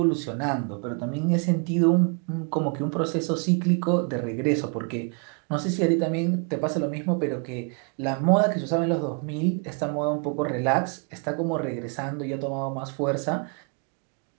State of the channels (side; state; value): left; quieter; 37.9 dB